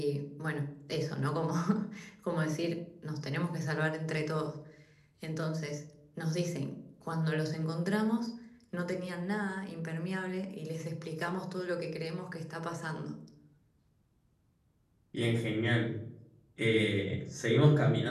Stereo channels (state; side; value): identical; both; correlation 1.00